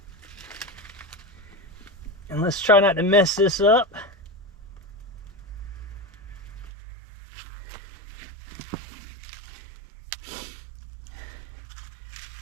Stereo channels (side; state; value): left; drops out; at 6.7 s